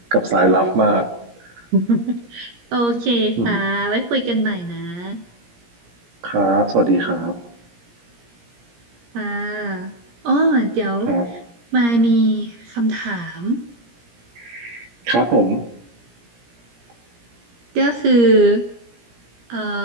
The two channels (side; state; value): left; late; 17 ms